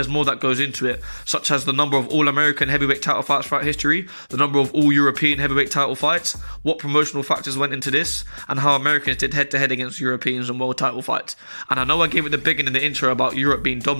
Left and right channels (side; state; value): both; inverted; correlation -1.00